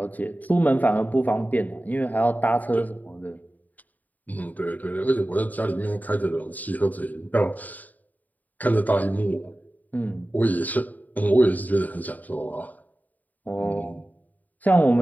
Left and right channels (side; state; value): right; late; 0.080 ms